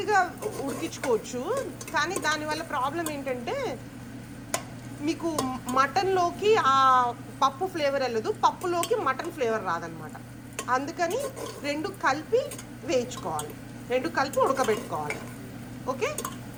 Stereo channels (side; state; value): both; identical; correlation 1.00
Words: ఉడికించుకోవచ్చు. కానీ దానివల్ల ప్రాబ్లం ఏంటంటే మీకు మటన్లోకి ఆ పప్పు ఫ్లేవర్ వెళ్ళదు, పప్పులోకి మటన్ ఫ్లేవర్ రాదనమాట. అందుకని 2 కలిపి వేయించుకోవాలి, 2 కలిపి ఉడకబెట్టుకోవాలి. ఓకే,